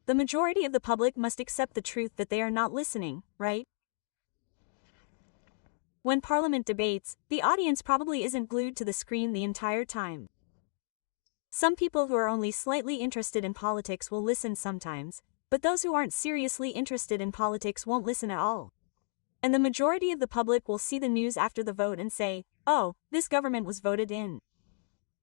the majority of the public must accept the truth that they are not listening, right? When Parliament debates, the audience probably isn't glued to the screen the entire time. Some people who are only slightly interested in politics will listen sometimes, but those who aren't seriously interested in politics won't listen at all. And the majority of the public will see the news after the vote and say, "Oh, this government was voted in."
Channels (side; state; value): right; silent; digital silence